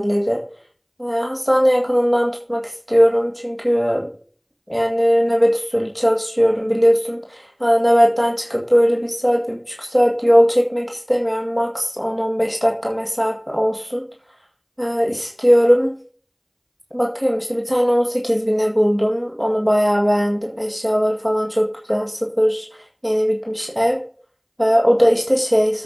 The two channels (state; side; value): identical; both; correlation 1.00